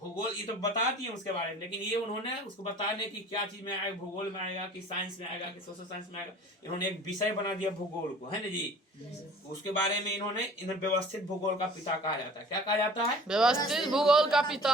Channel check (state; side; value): normal; both; correlation 0.47